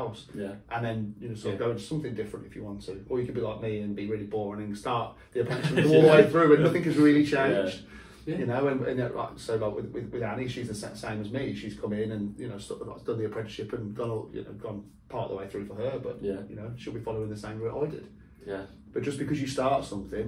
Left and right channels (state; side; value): identical; both; correlation 1.00